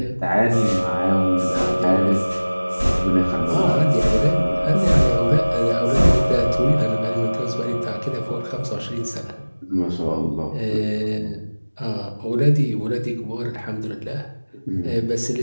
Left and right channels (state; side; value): inverted; both; correlation -1.00